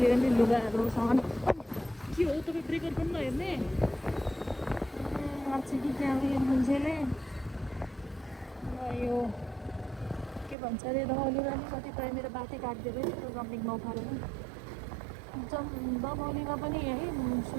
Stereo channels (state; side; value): drops out; left; at 10.6 s